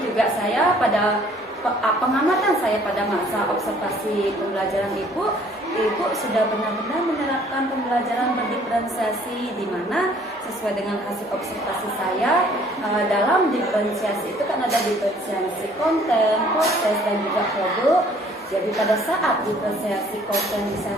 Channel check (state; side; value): normal; both; correlation 0.58